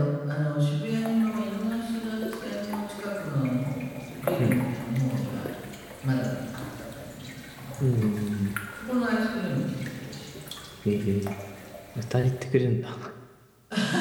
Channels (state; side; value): identical; both; correlation 1.00